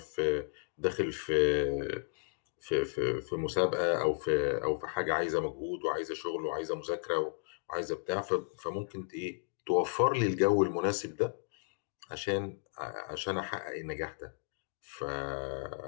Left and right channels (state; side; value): silent; right; digital silence